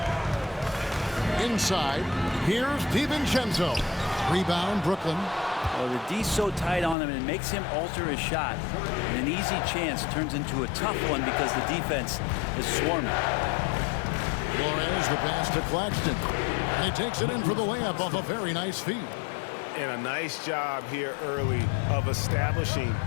Inside, here's DiVincenzo. Rebound, Brooklyn. Well, the D's so tight on him, and it makes him alter his shot. And an easy chance turns into a tough one because the defense is swarming. Flores, the pass to Claxton. And he takes it in for the layup off a very nice feed. And a nice job here early of establishing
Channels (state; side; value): drops out; right; at 7.0 s